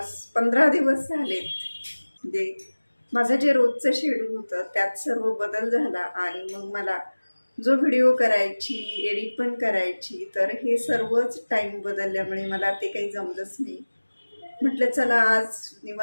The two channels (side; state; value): both; inverted; correlation -1.00